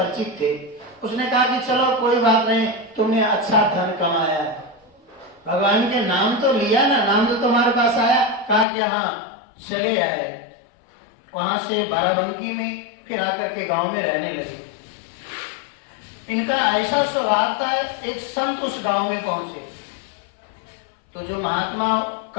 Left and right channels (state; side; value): drops out; right; at 8.7 s